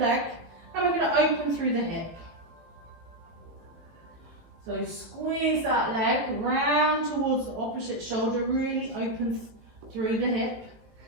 and we're going to open through the hip. So squeeze that leg round towards the opposite shoulder, really open through the hip.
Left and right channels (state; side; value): late; left; 18 ms